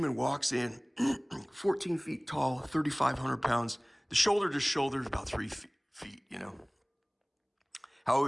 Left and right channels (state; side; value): identical; both; correlation 1.00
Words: walks in, 14 feet tall, 3,500 pounds. The shoulder to shoulder is about 3 feet, How I